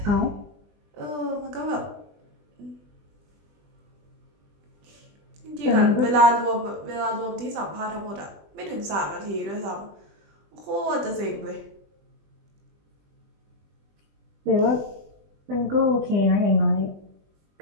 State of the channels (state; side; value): late; left; 20 ms